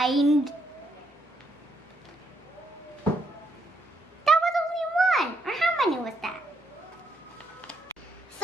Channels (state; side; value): normal; both; correlation 0.75